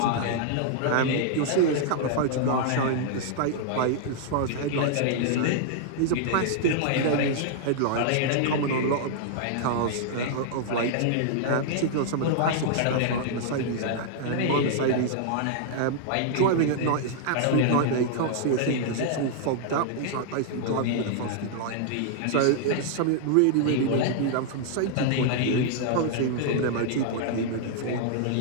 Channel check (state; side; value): different; both; correlation -0.01